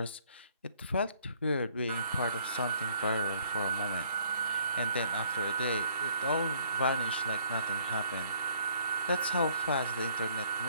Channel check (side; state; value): both; inverted; correlation -0.62